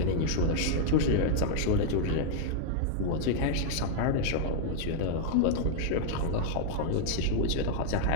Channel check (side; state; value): both; different; correlation -0.01